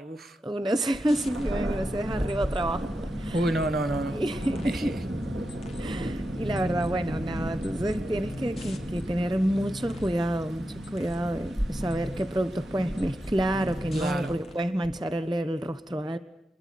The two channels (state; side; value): normal; both; correlation 0.88